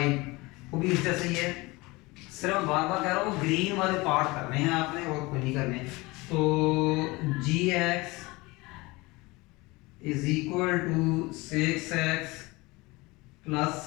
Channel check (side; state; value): right; quieter; 23.1 dB